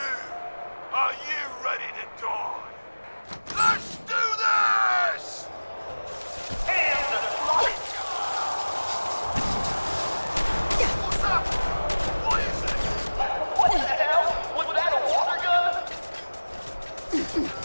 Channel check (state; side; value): inverted; both; correlation -1.00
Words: are you ready to die? Let's do this! Hands and flight! What's up? What is it? What the hell? Was that a water gun?